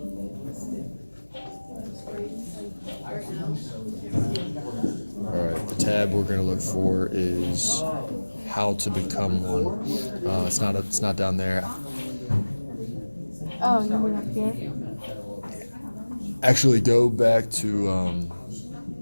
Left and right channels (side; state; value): both; inverted; correlation -1.00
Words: all right, the tab we're going to look for is how to become one. It's not down there. Oh, you mean up here? Actually, go back to